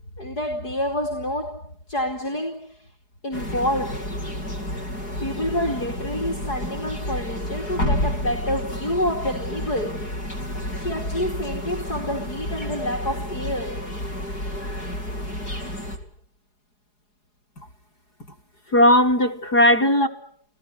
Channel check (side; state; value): right; late; 4.8 ms